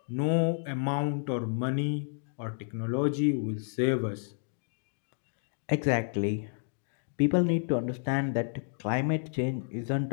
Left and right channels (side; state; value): right; silent; digital silence